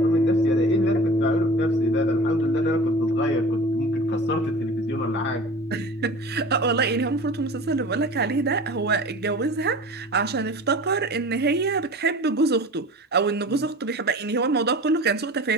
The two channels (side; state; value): both; normal; correlation 0.39